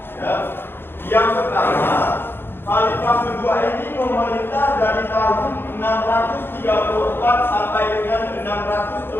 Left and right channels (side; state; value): right; late; 0.10 ms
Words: Ya. Yang pertama, khalifah kedua ini memerintah dari tahun